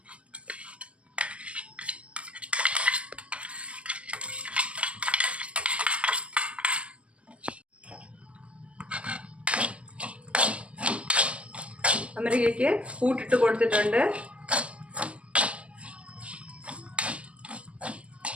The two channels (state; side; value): late; left; 0.061 ms